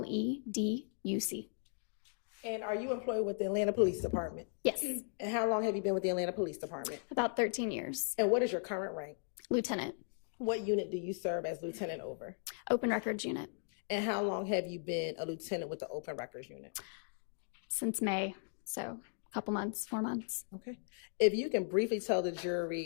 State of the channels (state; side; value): silent; right; digital silence